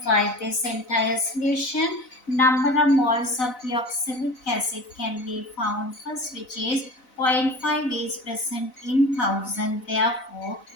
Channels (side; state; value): right; late; 4.0 ms